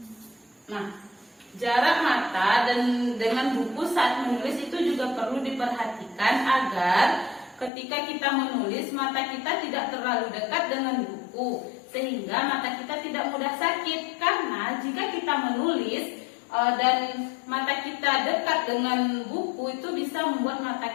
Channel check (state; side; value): drops out; right; at 7.7 s